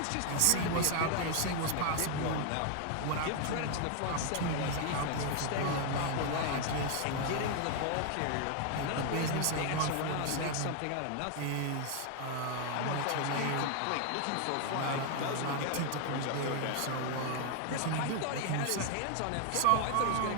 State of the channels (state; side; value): different; both; correlation 0.00